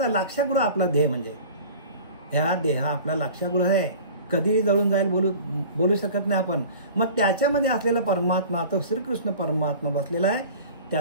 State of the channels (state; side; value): inverted; both; correlation -0.41